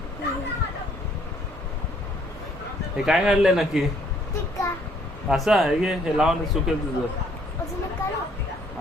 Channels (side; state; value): both; normal; correlation 0.64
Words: हे काय काढलंय नक्की? असं आहे की हे लावून सुकेल तुझं.